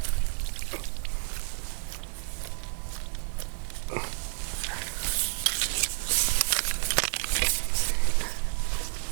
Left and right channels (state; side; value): quieter; left; 38.7 dB